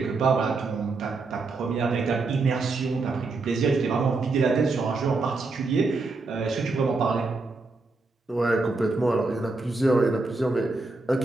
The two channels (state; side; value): quieter; left; 3.6 dB